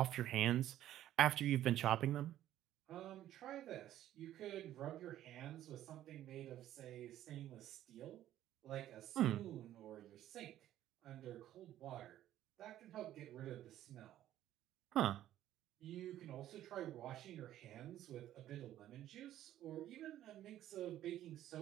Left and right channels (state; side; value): quieter; left; 12.7 dB